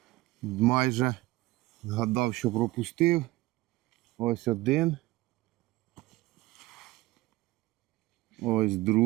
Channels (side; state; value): left; quieter; 18.9 dB